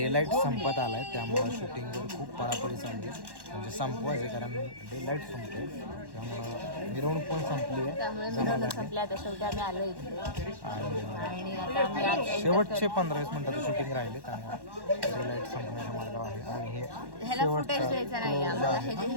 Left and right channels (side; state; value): left; late; 1.1 ms